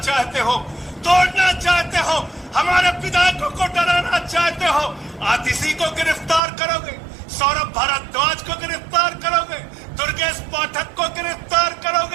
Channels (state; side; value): drops out; left; at 6.4 s